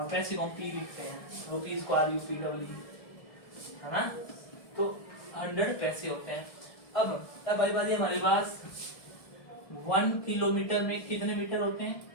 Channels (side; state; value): right; late; 1.7 ms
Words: पैसे को हम पी लिखते हैं, रुपीज को RUPEE, है ना। तो 100 पैसे होते हैं। अब भाई बात हमारे पास 1 किलोमीटर में कितने मीटर होते हैं?